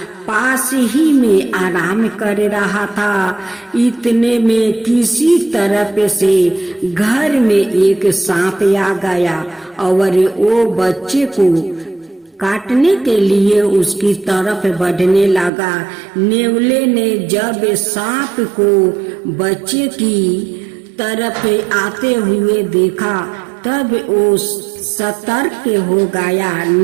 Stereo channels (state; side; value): drops out; left; at 15.5 s